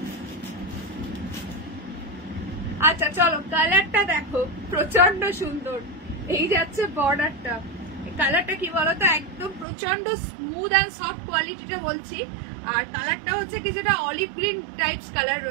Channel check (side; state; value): left; drops out; at 9.7 s